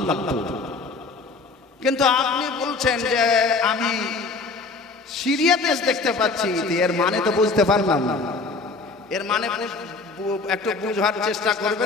লাগতো। কিন্তু আপনি বলছেন যে আমি সিরিয়া দেশ দেখতে পাচ্ছি, এর মানে তো বুঝতে পারলাম না। এর মানে একটু বুঝার চেষ্টা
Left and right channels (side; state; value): right; quieter; 3.9 dB